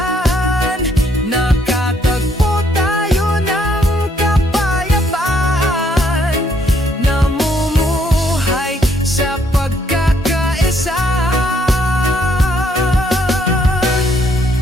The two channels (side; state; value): both; normal; correlation 0.69